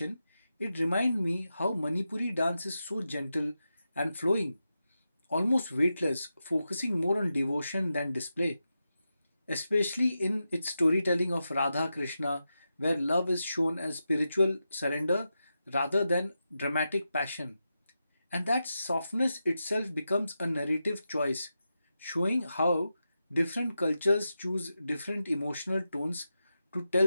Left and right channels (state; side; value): inverted; both; correlation -0.89